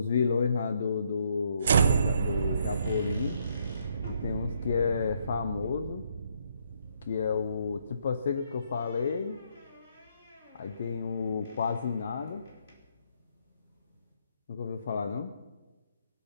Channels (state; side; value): inverted; both; correlation -0.72